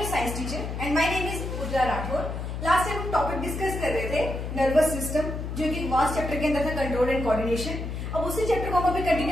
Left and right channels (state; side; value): noise; left; hum, 5 dB below the sound